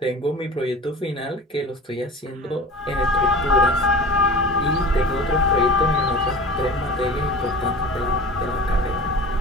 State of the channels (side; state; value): both; normal; correlation 0.36